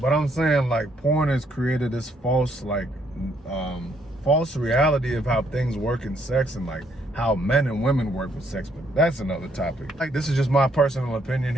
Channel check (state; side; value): normal; both; correlation 0.70